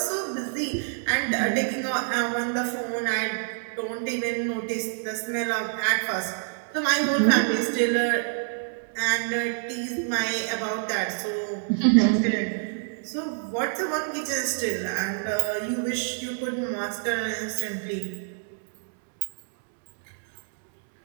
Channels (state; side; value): silent; left; digital silence